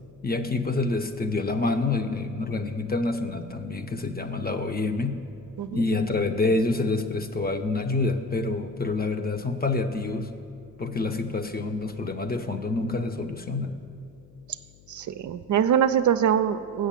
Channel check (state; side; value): noise; left; hum, 25 dB below the sound